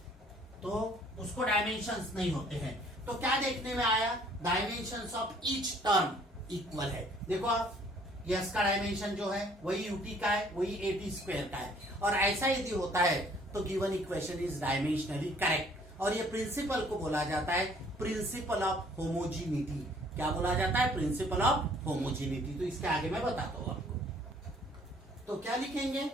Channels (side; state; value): both; normal; correlation 0.59